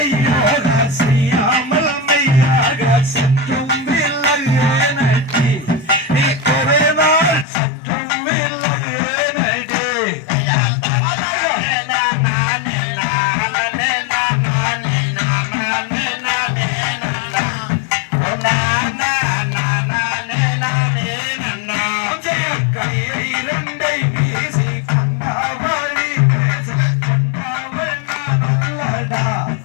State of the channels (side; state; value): right; drops out; at 7.5 s